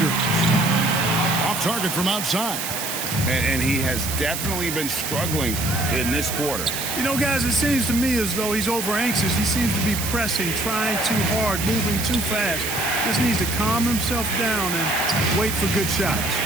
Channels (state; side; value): noise; right; hiss, 5 dB below the sound